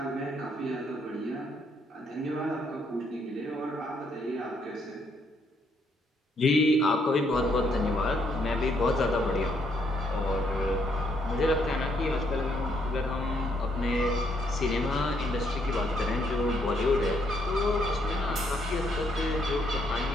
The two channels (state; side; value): normal; both; correlation 0.72